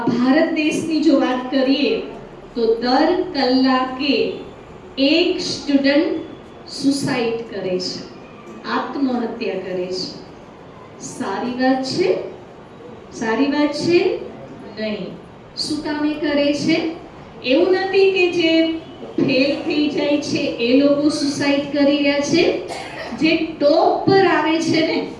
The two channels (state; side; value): identical; both; correlation 1.00